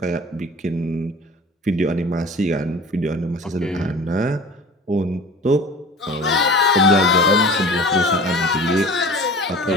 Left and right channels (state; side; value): normal; both; correlation 0.40